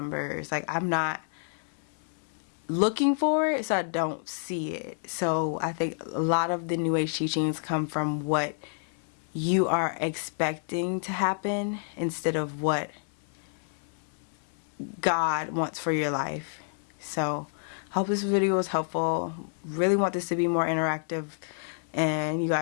Like, I'm not looking for it, so I don't see it. So I think a lot of the New Age teachings come from what you are expecting to happen instead of what God wants for your life. So hope this video was helpful. Really want this to be more interactive, and you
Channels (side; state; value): right; silent; 59 dB below the other